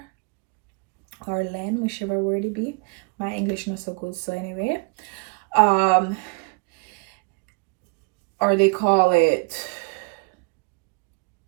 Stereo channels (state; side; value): quieter; left; 33.1 dB